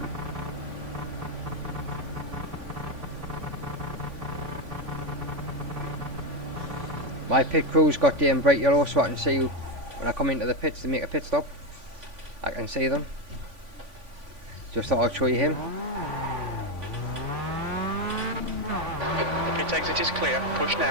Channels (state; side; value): late; left; 3.5 ms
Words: My pit crew's got bright yellow, so I can see when I come into the pits to make a pit stop. I can see them. Just thought I'd show you him. The pit exit is clear. Push